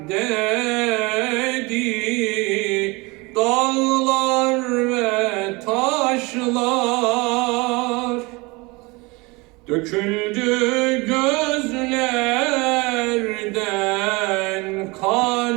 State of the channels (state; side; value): quieter; left; 25.4 dB